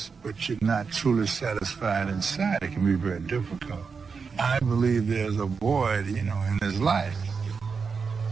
but you're not truly satisfied inside, it can be very difficult. I believe there's a void, in his life.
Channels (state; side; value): quieter; left; 5.3 dB